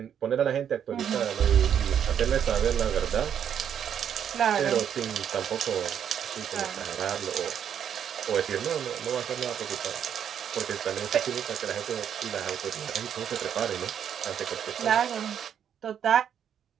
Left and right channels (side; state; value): left; quieter; 8.8 dB